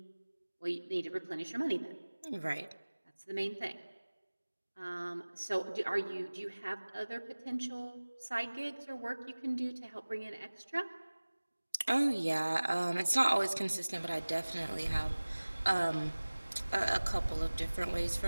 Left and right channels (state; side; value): inverted; both; correlation -1.00